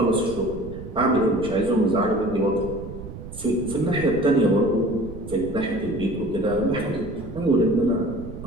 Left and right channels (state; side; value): noise; right; rumble, 12 dB below the sound